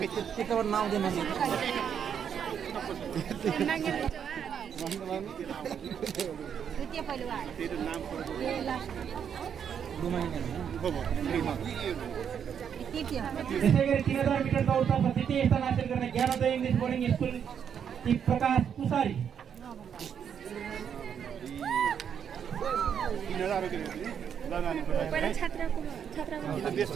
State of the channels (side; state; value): left; quieter; 8.0 dB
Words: यसै गरी 3000 मिटर दौडतर्फ द्वितीय स्थान हासिल गर्ने ज्ञानोदय इङ्ग्लिस बोर्डिङ स्कुल की प्रकाश पुसारी।